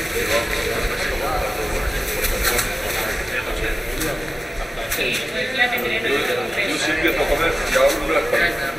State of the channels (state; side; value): normal; both; correlation 0.96